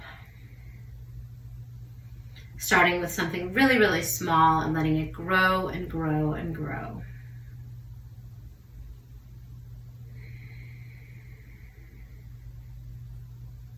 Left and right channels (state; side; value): identical; both; correlation 1.00